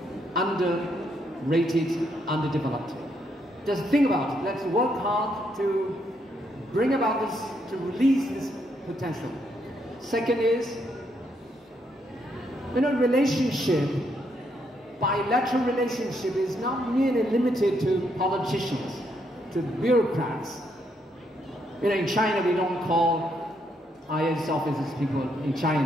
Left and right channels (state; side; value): normal; both; correlation 0.75